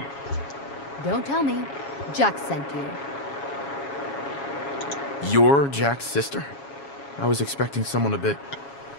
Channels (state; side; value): late; right; 7.2 ms